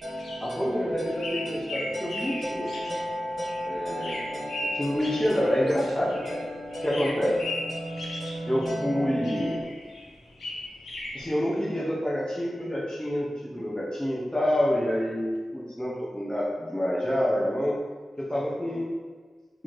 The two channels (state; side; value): normal; both; correlation 0.94